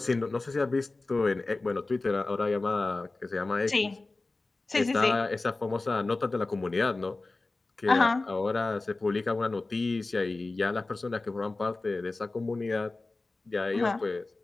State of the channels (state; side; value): quieter; right; 3.3 dB